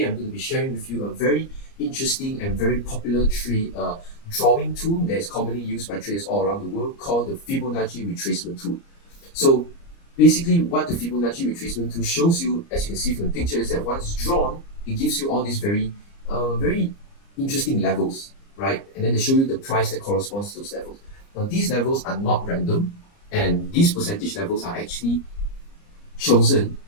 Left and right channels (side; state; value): right; late; 30 ms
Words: I'm going to be sharing with you a very interesting and very popular trade drawing tool that is commonly used by traders all around the world called the Fibonacci Retracement tool. So basically what the Fibonacci Retracement tool shows you, as you can see from the picture, is that once drawn, it gives you all these very interesting levels, right? And then they show you the price that corresponds to those levels. Now these levels are not random, and these percentage levels are actually chosen